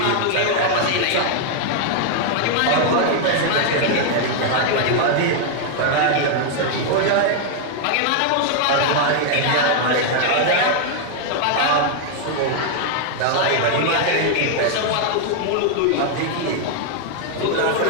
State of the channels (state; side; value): different; both; correlation 0.00